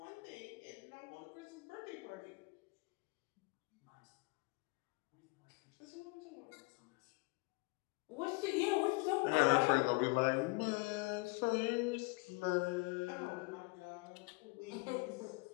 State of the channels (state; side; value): quieter; right; 27.9 dB